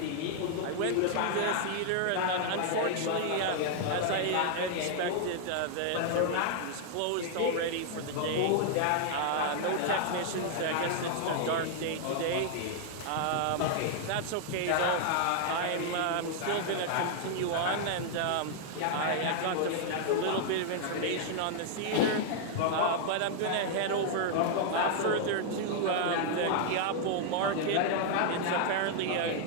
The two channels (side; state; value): both; different; correlation -0.01